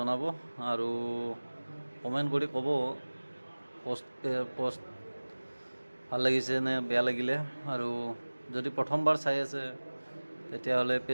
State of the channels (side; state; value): both; inverted; correlation -1.00